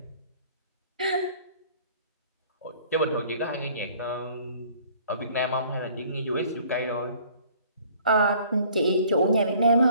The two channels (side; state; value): both; inverted; correlation -0.55